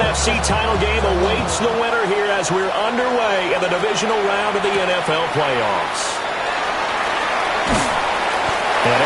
title game awaits the winner here as we're underway in the divisional round of the NFL playoffs. And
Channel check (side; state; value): both; identical; correlation 1.00